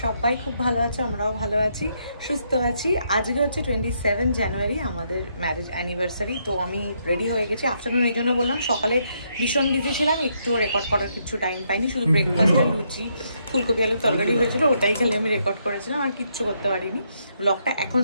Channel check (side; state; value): both; inverted; correlation -0.76